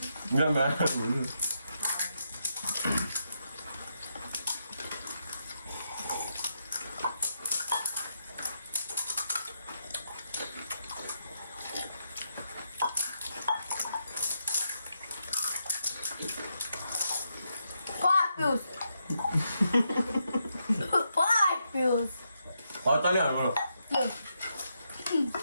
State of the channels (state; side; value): inverted; both; correlation -0.81